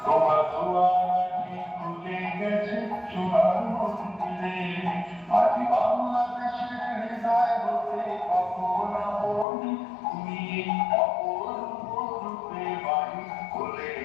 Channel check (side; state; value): right; drops out; at 9.5 s